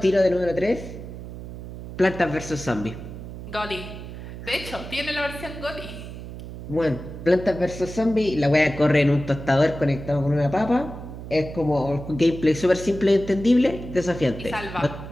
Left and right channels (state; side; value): noise; right; hum, 11 dB below the sound